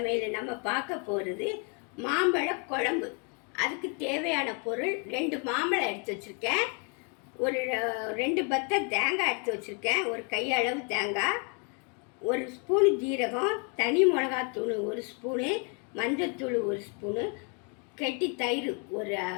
நம்ம பார்க்க போகிறது மாம்பழ குழம்பு. அதுக்கு தேவையான பொருள் 2 மாம்பழம் எடுத்து வச்சுருக்கேன், ஒரு 2 பத்தை தேங்காய் எடுத்து வச்சுருக்கேன், ஒரு கையளவு தேங்காய், 1 ஸ்பூனு ஜீரகம், தனி மிளகாத்தூள் 1 ஸ்பூனு, மஞ்சத்தூள் 1 ஸ்பூனு, கெட்டி தயிர்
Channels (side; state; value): right; quieter; 37.2 dB